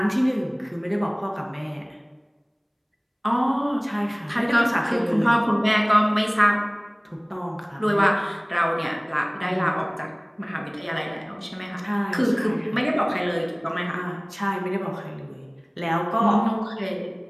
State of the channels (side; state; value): both; identical; correlation 1.00